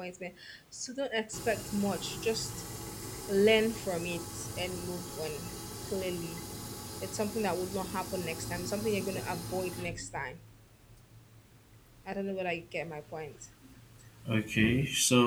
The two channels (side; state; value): both; identical; correlation 1.00